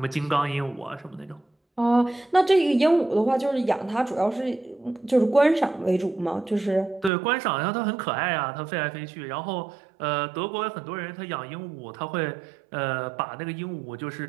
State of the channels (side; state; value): left; drops out; at 7.1 s